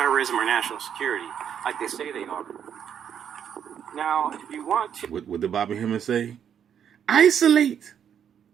or national security like they say they are. Now, if you want to... What did Bobby Hemmings say? Isolate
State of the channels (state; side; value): quieter; left; 8.6 dB